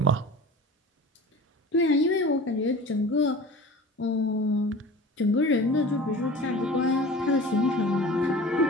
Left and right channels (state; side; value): normal; both; correlation 0.39